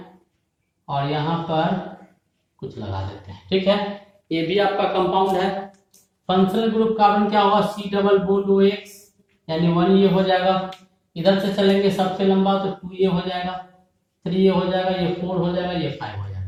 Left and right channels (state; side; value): identical; both; correlation 1.00